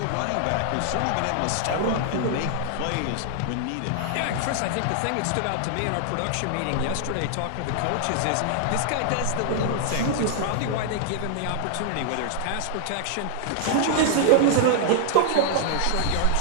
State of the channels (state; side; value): different; both; correlation -0.01